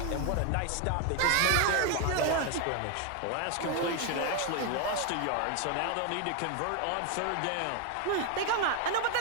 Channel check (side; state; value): both; different; correlation 0.01